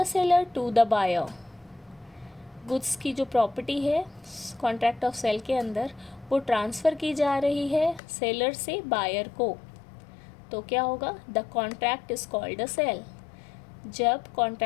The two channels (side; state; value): right; drops out; at 8.0 s